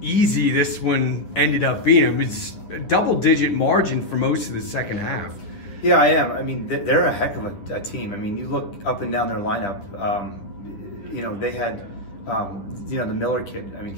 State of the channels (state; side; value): late; right; 9.8 ms